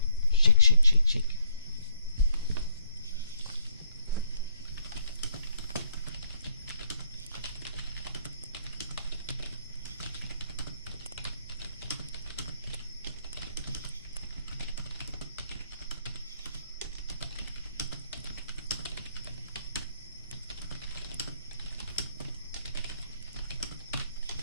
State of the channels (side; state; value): both; inverted; correlation -0.68